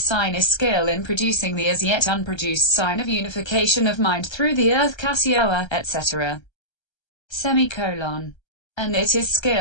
is skill in producing the as yet unproduced sign of unification of mind through the earth KASIÓA, etc. And it is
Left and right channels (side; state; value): right; late; 1.3 ms